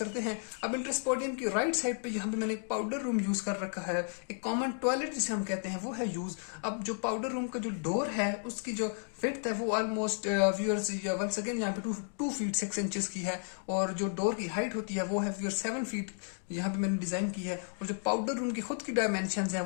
हैं। अब इंट्रेंस पोडियम की राइट साइड पे यहाँ पे मैंने एक पाउडर रूम यूज कर रखा है, एक कॉमन टॉयलेट जिसे हम कहते हैं वो है यूज। अब जो पाउडर रूम का जो डोर है उसकी जो विड्थ है वो ऑलमोस्ट व्यूअर्स वंस अगेन यहाँ पे 2 फीट 6 इंचेस की है, और जो डोर की हाइट होती है वो है व्यूअर्स 7 फीट यहाँ पे मैंने डिजाइन की है। और जो पाउडर रूम की खुद की डायमेंशंस हैं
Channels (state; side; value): silent; right; 56 dB below the other